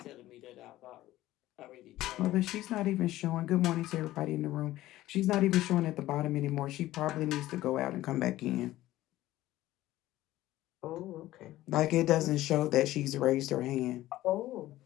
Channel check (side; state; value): right; quieter; 15.6 dB